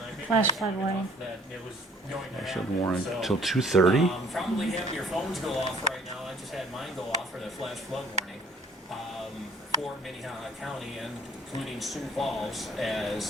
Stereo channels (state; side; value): normal; both; correlation 0.56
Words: Flash flood warning. that it was going to Should happen, warrant so, till 2:30. Probably have your phones go off right now. I just had mine go off for the flash flood warning for Minnehaha County and including Sioux Falls,